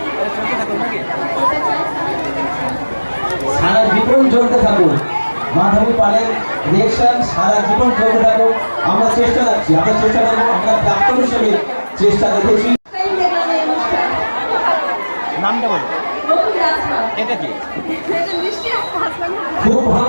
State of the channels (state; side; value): inverted; both; correlation -1.00